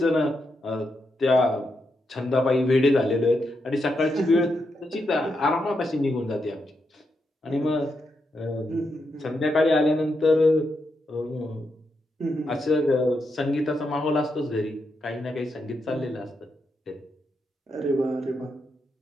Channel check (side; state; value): both; normal; correlation 0.83